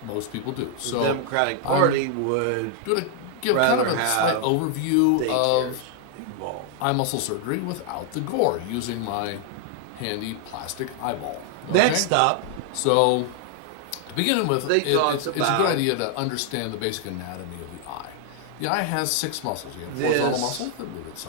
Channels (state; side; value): different; both; correlation 0.00